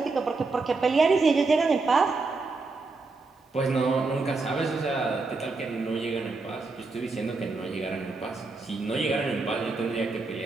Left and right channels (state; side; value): quieter; left; 3.8 dB